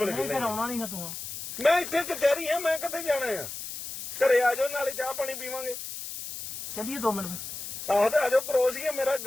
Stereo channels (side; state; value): left; noise; hiss, 8 dB below the sound